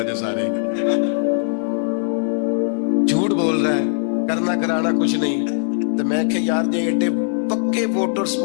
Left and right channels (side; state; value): right; silent; digital silence